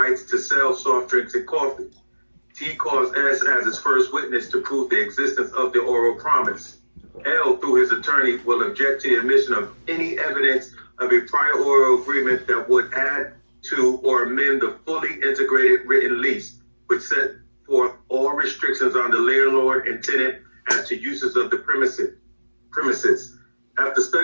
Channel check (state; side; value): inverted; both; correlation -1.00